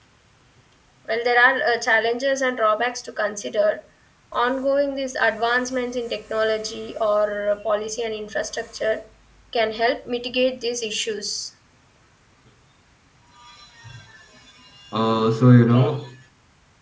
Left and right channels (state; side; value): identical; both; correlation 1.00